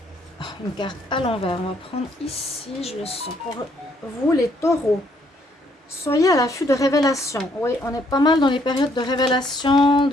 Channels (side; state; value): both; normal; correlation 0.68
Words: une carte à l'envers. On va prendre ici, je le sens. Pour vous, les taureaux, soyez à l'affût de révélations. Oui, on est pas mal dans les périodes de révélation,